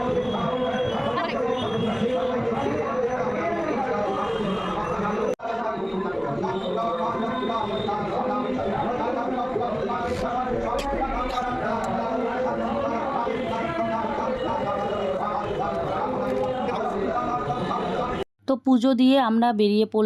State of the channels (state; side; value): identical; both; correlation 1.00